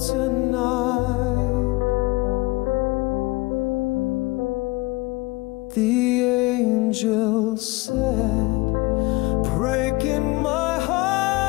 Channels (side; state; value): right; quieter; 22.5 dB